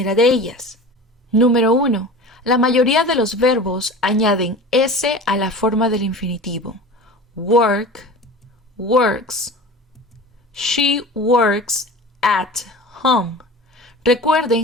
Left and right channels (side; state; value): both; normal; correlation 0.36